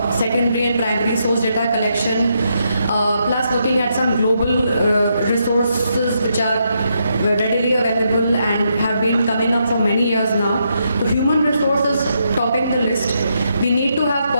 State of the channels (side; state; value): both; inverted; correlation -0.79